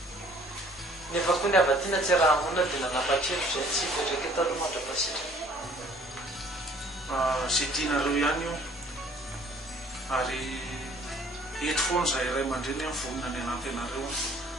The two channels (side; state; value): both; normal; correlation 0.56